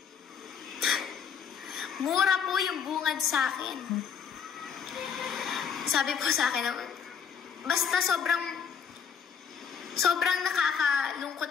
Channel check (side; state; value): right; quieter; 7.1 dB